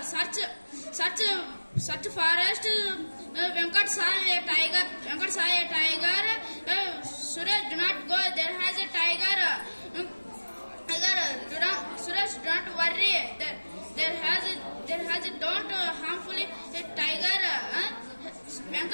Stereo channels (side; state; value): both; inverted; correlation -1.00